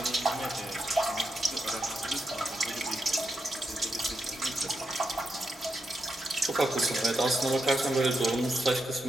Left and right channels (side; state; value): both; normal; correlation 0.84